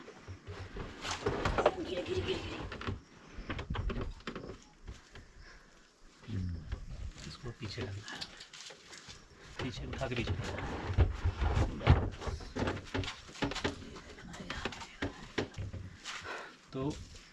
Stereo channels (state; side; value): identical; both; correlation 1.00